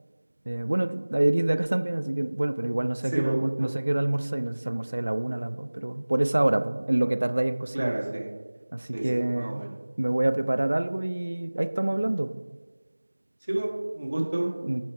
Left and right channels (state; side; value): inverted; both; correlation -1.00